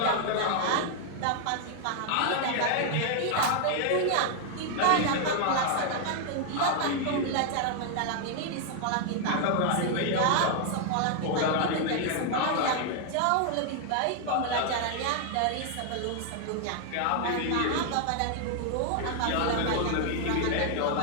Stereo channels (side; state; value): both; different; correlation 0.00